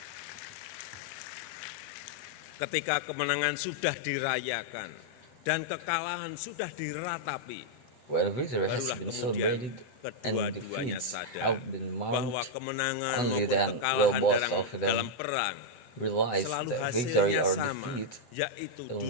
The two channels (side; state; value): right; late; 7.9 ms